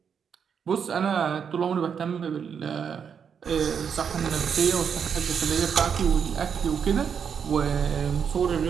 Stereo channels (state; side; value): quieter; left; 7.1 dB